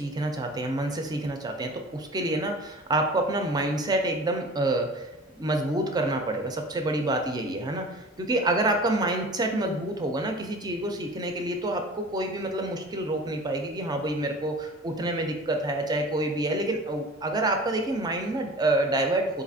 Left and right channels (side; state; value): both; normal; correlation 0.40